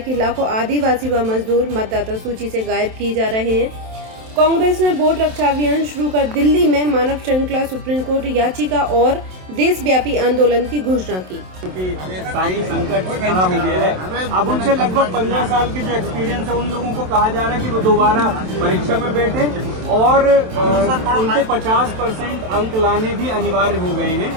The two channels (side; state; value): left; late; 27 ms